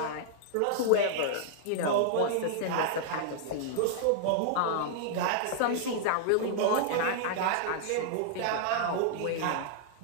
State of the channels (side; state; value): both; different; correlation -0.01